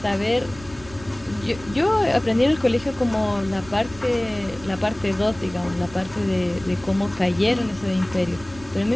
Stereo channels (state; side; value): noise; right; rumble, 19 dB below the sound